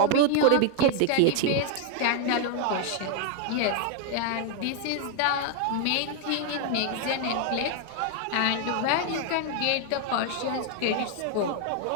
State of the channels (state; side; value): different; both; correlation 0.00